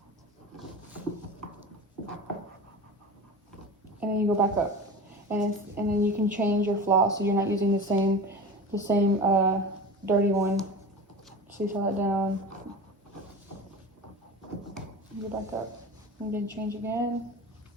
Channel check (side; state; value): both; normal; correlation 0.32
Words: And then you go back up, and then you can change your floss so you're not using the same dirty one. Seesaw that down. Go back up, and then change again.